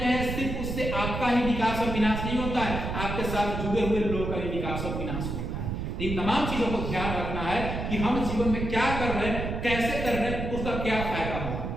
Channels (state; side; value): noise; right; rumble, 4 dB below the sound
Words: हैं सिर्फ उससे आपका ही विकास और विनाश नहीं होता है, आपके साथ जुड़े हुए लोगों का भी विकास और विनाश होता है। इन तमाम चीजों को ध्यान रखना है कि हम जीवन में क्या कर रहे हैं, कैसे कर रहे हैं, उसका क्या फायदा होगा।